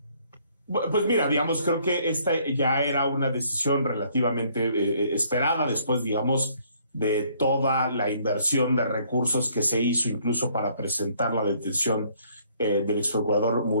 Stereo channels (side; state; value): both; inverted; correlation -0.64